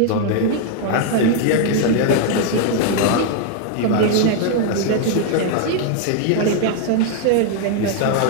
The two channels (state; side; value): different; both; correlation 0.00